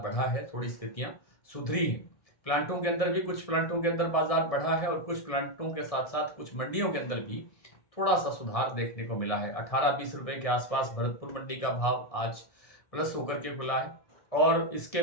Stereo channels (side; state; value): right; late; 1.6 ms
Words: बढ़ा है, थोड़ी स्थितियां सुधरी हैं। प्लांटों के अंदर भी कुछ प्लांटों के अंदर बाजार बढ़ा है और कुछ प्लांटों के साथ साथ कुछ मंडियों के अंदर भी थोड़ा सा सुधार देखने को मिला है। 18-20 रुपए के आसपास भरतपुर मंडी का भाव आज प्लस होकर के खुला है। और इसके